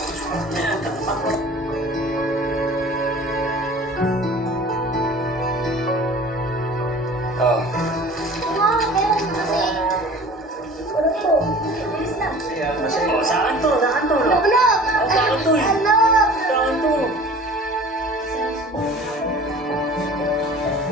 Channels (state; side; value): normal; both; correlation 0.44